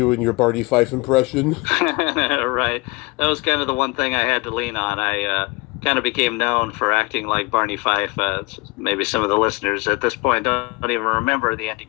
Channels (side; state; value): right; quieter; 25.6 dB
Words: your Barney Fife impression? Right. That was kind of the one thing I had to lean on. I kind of became known for acting like Barney Fife. Maybe some of the listeners at this point don't even remember the Andy